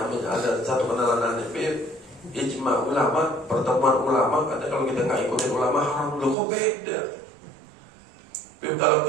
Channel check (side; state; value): left; drops out; at 6.4 s